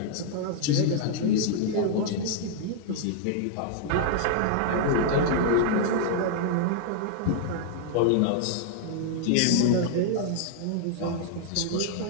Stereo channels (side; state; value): both; different; correlation -0.01